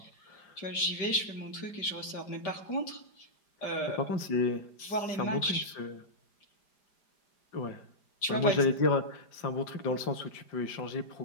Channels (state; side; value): late; right; 5.0 ms